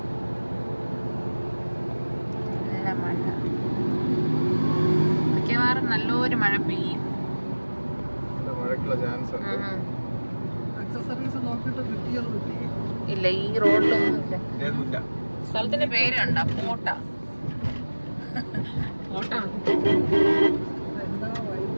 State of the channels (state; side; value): inverted; both; correlation -1.00